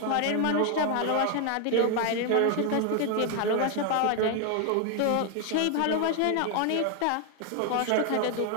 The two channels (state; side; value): different; both; correlation 0.00